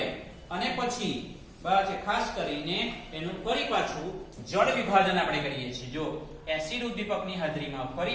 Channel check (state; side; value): identical; both; correlation 1.00